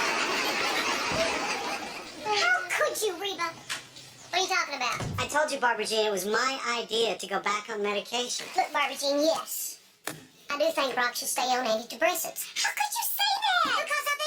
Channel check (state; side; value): identical; both; correlation 1.00